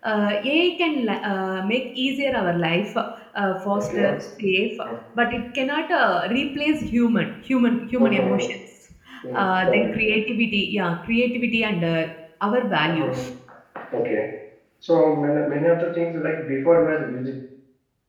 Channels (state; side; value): identical; both; correlation 1.00